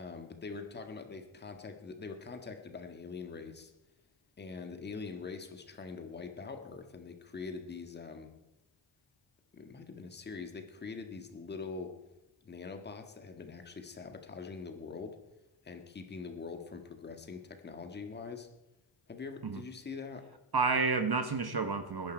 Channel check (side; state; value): both; normal; correlation 0.08